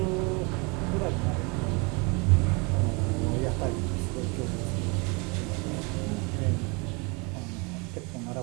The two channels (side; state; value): left; quieter; 30.1 dB